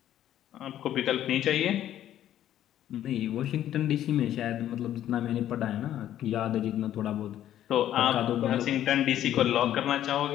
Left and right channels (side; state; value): right; quieter; 11.8 dB